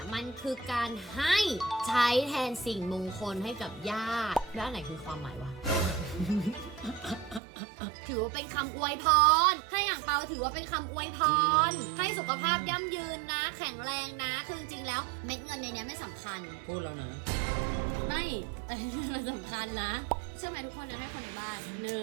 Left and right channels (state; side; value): drops out; left; at 7.4 s